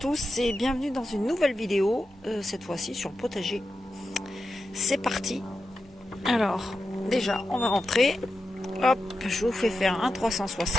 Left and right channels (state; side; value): normal; both; correlation 0.89